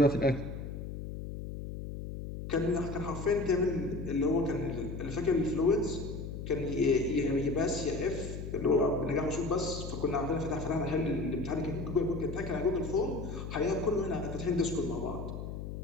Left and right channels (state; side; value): noise; left; hum, 7 dB below the sound